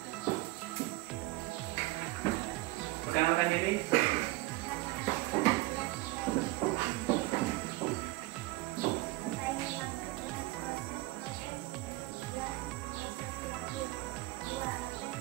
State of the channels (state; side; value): quieter; left; 20.4 dB